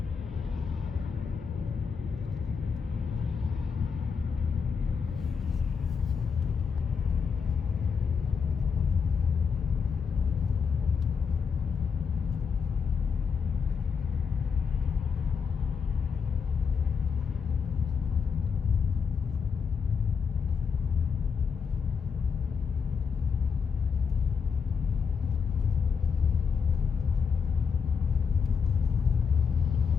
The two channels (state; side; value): quieter; right; 6.0 dB